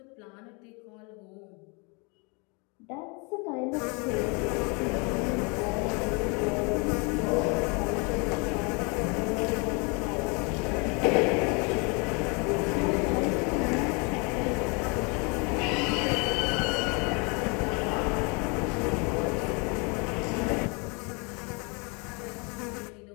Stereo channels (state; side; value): quieter; right; 31.6 dB